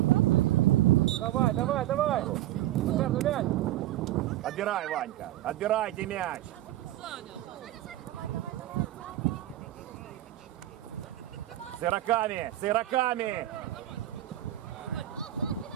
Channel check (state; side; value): quieter; left; 14.5 dB